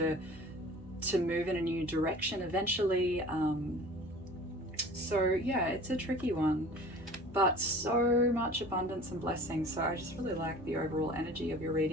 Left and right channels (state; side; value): normal; both; correlation 0.44